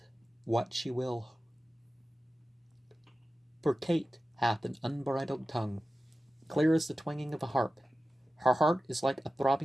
what she will. For Kate hath an unbridled tongue, clear as the twanging of a harp. Her heart is like a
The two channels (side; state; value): both; normal; correlation 0.94